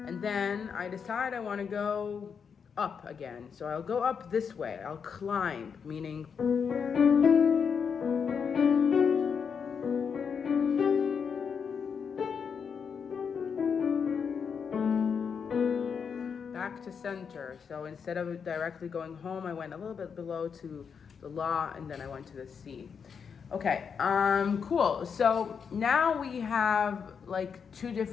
and then I decide I want to go up again. So I'll go up this way. I'll climb, meaning back to center. So instead of directly going home, I went a little bit below to the La, and then I went to the C. Okay, cool. So now we have like 2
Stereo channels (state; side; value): quieter; right; 6.5 dB